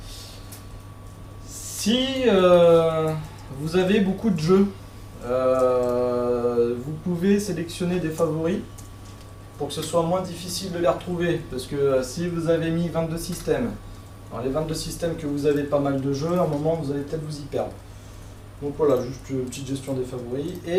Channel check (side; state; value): both; identical; correlation 1.00